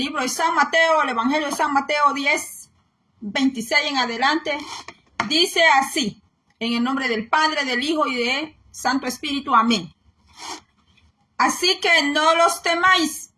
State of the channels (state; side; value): identical; both; correlation 1.00